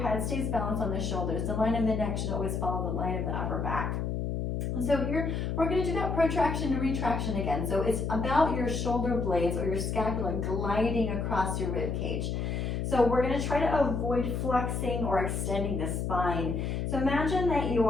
head stays balanced on the shoulders. The line of the neck should always follow the line of the upper back. So here, we're going to do that protraction and retraction again. So it's about your shoulder blades or your scapula gliding across your rib cage. So we're going to try to avoid flexing or extending the spine. So imagine that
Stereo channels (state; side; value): noise; left; hum, 1 dB below the sound